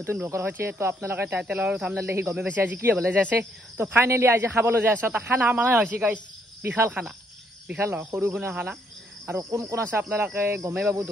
ব্লগৰ হৈছে তো আপোনালোকে টাইটেলৰ থাম্বনেল দেখি গমে বেছি আজি কি হ'বলৈ যাইছে তো ফাইনালি আজি খাবলৈ যাই আছে তা খানা মানে হৈছে গাইস বিশাল খানা বিশাল নহয় সৰু গুণা খানা আৰু কোন কোন আছে আপোনালোকে গমে বাবু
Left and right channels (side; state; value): both; normal; correlation 0.71